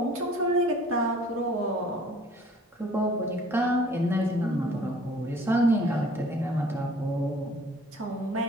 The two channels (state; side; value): normal; both; correlation 0.53